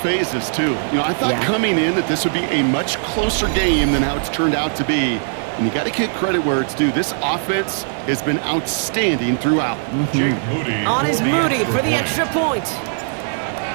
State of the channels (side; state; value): left; silent; 66 dB below the other